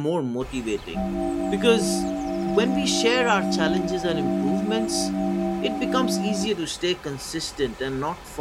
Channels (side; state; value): both; identical; correlation 1.00